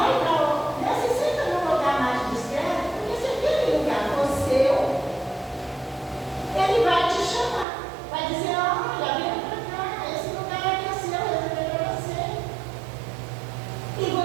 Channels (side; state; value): left; drops out; at 7.7 s